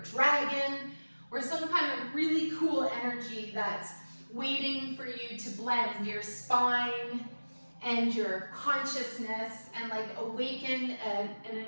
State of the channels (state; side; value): inverted; both; correlation -1.00